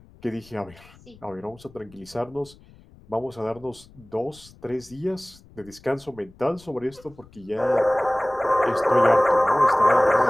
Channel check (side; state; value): left; noise; rumble, 25 dB below the sound